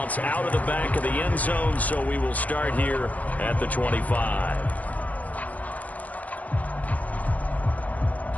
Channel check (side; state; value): right; late; 0.075 ms